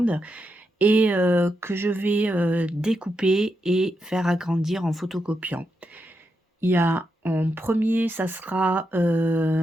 et que je vais, découper et faire agrandir en photocopiant. Il y a en premier, ça sera,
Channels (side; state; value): both; normal; correlation 0.85